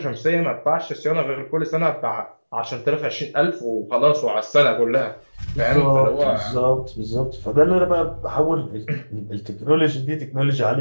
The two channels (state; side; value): inverted; both; correlation -1.00